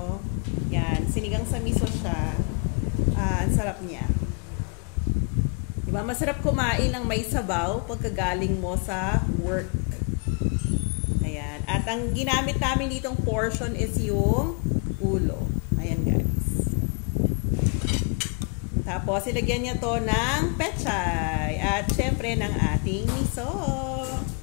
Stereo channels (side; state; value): right; quieter; 38.9 dB